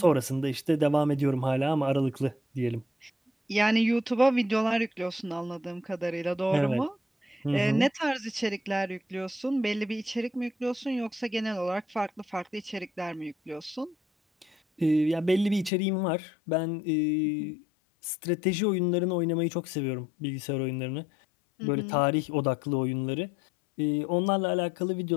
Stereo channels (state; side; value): drops out; right; at 15.7 s